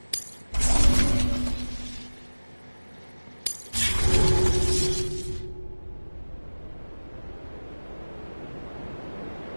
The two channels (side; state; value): both; inverted; correlation -1.00